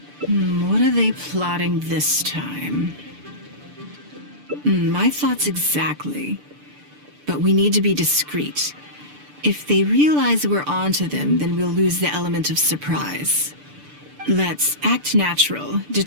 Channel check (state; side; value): late; left; 6.8 ms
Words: What are they plotting this time? My thoughts exactly. But we need to be discreet. If they realize we're onto them, then we'll lose the element of surprise. Let's act natural,